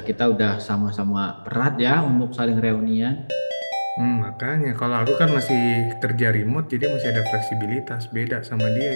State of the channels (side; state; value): both; inverted; correlation -1.00